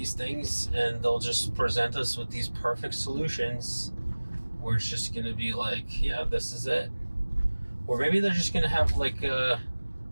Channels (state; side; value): inverted; both; correlation -1.00